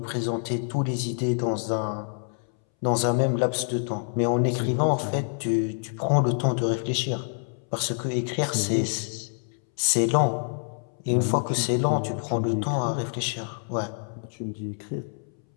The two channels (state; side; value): silent; right; 60 dB below the other